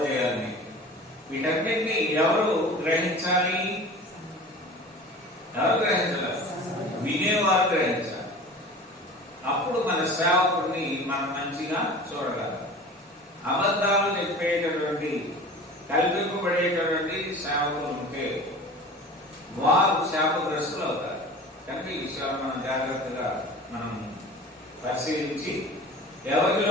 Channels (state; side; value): normal; both; correlation 0.39